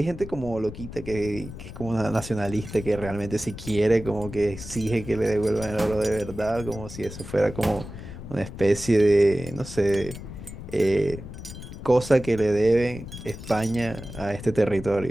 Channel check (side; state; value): left; noise; rumble, 12 dB below the sound